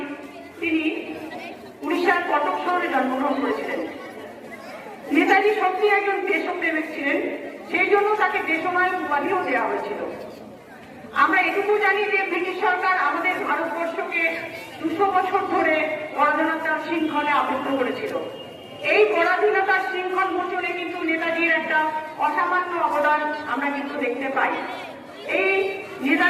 তিনি উড়িষ্যার কটক শহরে জন্মগ্রহণ করেছিলেন। নেতাজি সত্যি একজন দেশপ্রেমিক ছিলেন, সেই জন্য তাকে দেশনায়ক উপাধিও দেওয়া হয়েছিল। আমরা এটুকু জানি যে ব্রিটিশ সরকার আমাদের ভারতবর্ষকে 200 বছর ধরে পরাধীনতার শৃঙ্খলে আবদ্ধ করেছিল। এই পরাধীনতার শৃঙ্খল মোচনে কিন্তু নেতাজির একটা অসামান্য অবদান আমরা কিন্তু দেখতে পাই। এই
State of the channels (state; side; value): identical; both; correlation 1.00